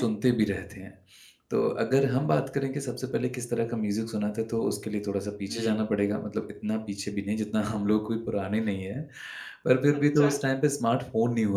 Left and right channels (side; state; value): both; identical; correlation 1.00